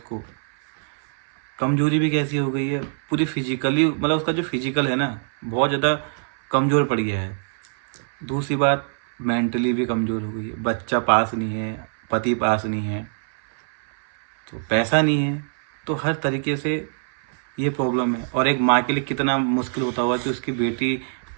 कमजोरी भी कैसी हो गई है पूरी फिजिकली, मतलब उसका जो फिजिकल है ना बहुत ज़्यादा कमज़ोर पड़ गया है। दूसरी बात मेंटली भी कमज़ोर हो गई है। बच्चा पास नहीं है, पति पास नहीं है, तो पैसा नहीं है, तो हर तरीके से ये प्रॉब्लम है। और एक माँ के लिए कितना मुश्किल होता होगा कि उसकी बेटी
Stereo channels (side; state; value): left; silent; 61 dB below the other